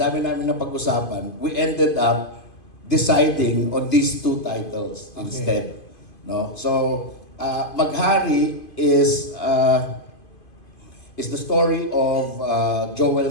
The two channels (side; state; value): right; late; 2.5 ms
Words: dami namin na pag-usapan, we ended up deciding on these two titles instead. No? So, Maghari is the story of